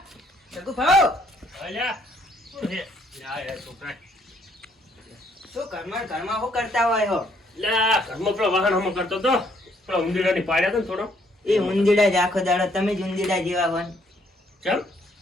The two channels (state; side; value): normal; both; correlation 0.67